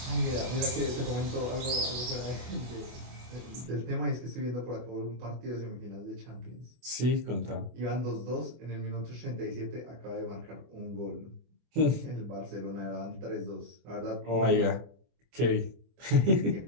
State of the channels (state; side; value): late; left; 24 ms